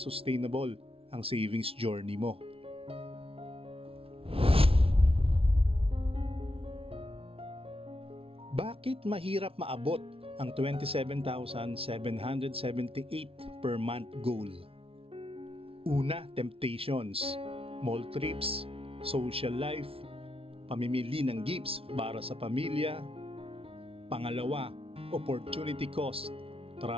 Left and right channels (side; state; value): left; late; 0.27 ms